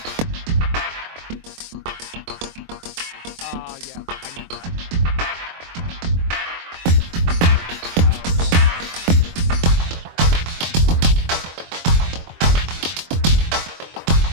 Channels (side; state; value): left; late; 23 ms